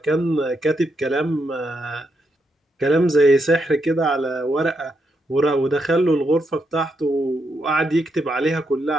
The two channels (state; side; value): normal; both; correlation 0.80